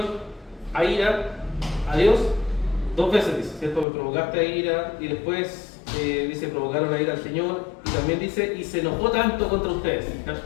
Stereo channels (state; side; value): drops out; right; at 3.9 s